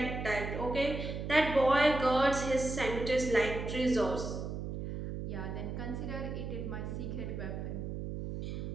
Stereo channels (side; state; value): right; noise; hum, 5 dB below the sound